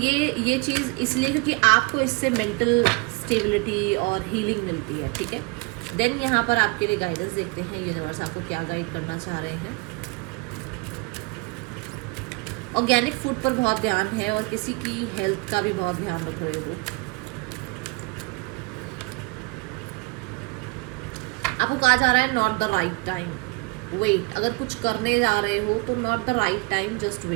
चीज़ इसलिए क्योंकि आपको इससे मेंटल स्टेबिलिटी और हीलिंग मिलती है, ठीक है। देन यहाँ पर आपके लिए गाइडेंस देखते हैं, यूनिवर्स आपको क्या गाइड करना चाह रहे हैं। ऑर्गेनिक फूड पर बहुत ध्यान है और किसी की हेल्थ का भी बहुत ध्यान रख रहे हो। आपको कहा जा रहा है not the right time, wait. अगर कुछ करने जा रहे हो तो not the right time, just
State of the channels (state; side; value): quieter; left; 27.2 dB